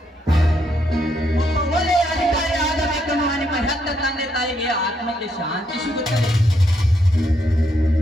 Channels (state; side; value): normal; both; correlation 0.76